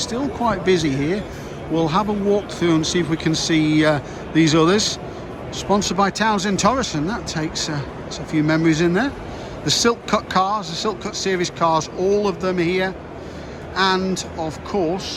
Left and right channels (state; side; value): identical; both; correlation 1.00